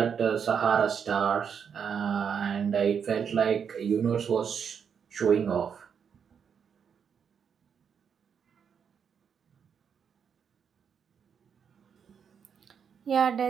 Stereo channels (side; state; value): left; quieter; 7.1 dB